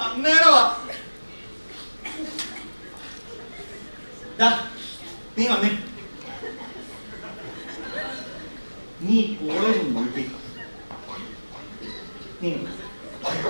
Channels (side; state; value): both; inverted; correlation -1.00